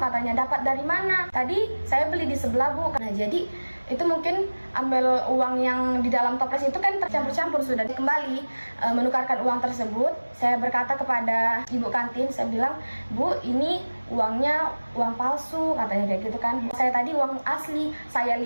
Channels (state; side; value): inverted; both; correlation -1.00